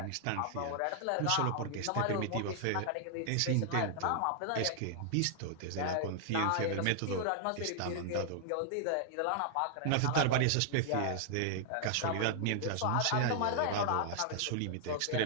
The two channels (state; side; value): different; both; correlation -0.01